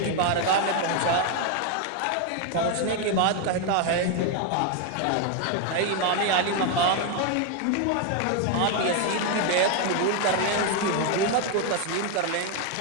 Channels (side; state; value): both; different; correlation 0.01